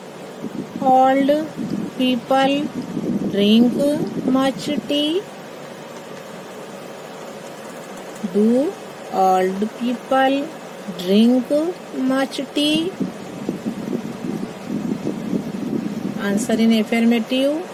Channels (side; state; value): both; identical; correlation 1.00